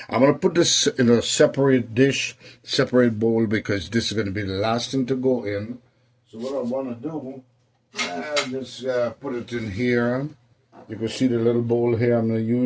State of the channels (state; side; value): identical; both; correlation 1.00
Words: going to put this in a separate dish, separate bowl, because this is going to be the last thing to go in. So what I want to do, just put it in here. You can see the little bowl here I'm going to